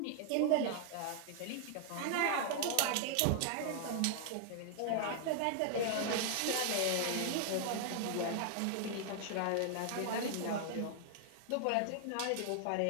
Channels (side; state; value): both; different; correlation 0.00